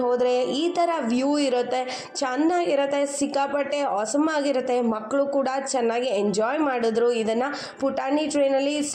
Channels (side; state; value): both; identical; correlation 1.00